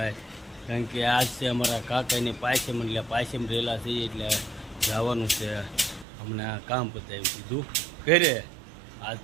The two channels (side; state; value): left; drops out; at 6.1 s